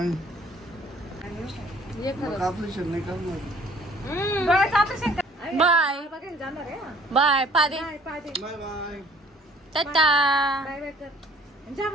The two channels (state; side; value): normal; both; correlation 0.56